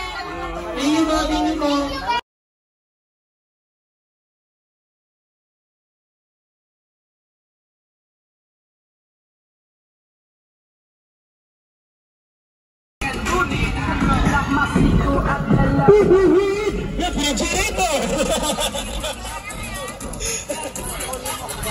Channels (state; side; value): identical; both; correlation 1.00